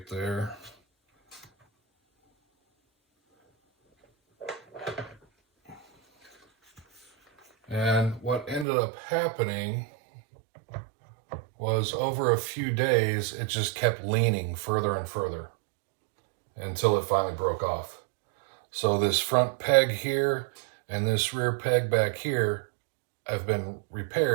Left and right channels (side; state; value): left; drops out; at 8.7 s